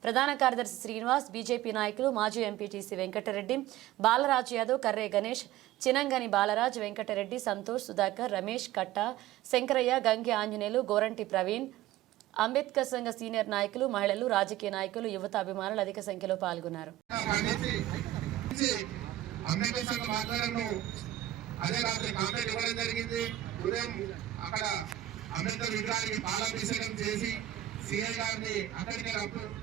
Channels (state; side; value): quieter; left; 14.0 dB